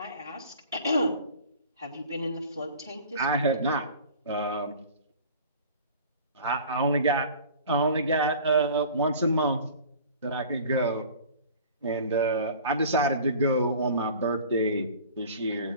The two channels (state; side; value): inverted; both; correlation -0.43